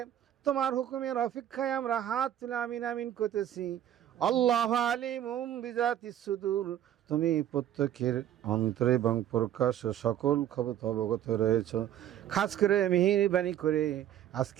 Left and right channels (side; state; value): left; quieter; 11.2 dB